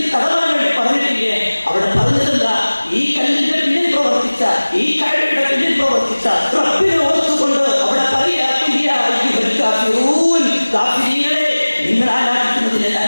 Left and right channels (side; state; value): both; inverted; correlation -1.00